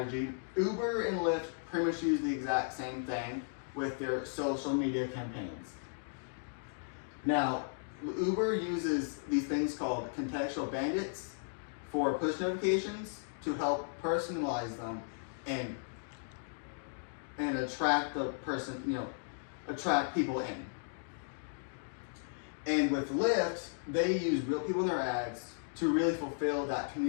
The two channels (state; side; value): silent; right; digital silence